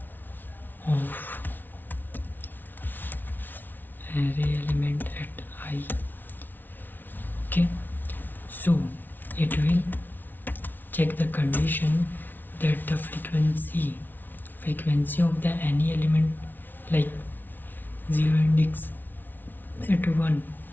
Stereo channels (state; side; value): late; right; 0.089 ms